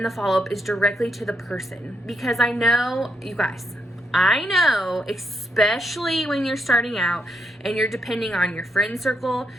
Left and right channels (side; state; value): both; normal; correlation 0.79